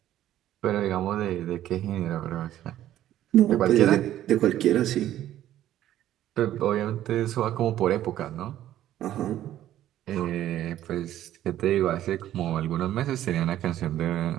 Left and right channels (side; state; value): left; quieter; 12.7 dB